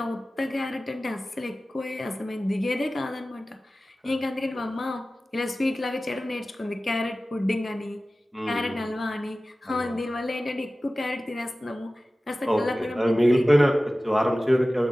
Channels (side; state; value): both; normal; correlation 0.96